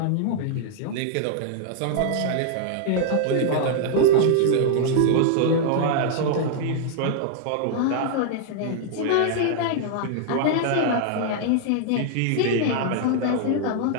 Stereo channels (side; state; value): both; different; correlation -0.01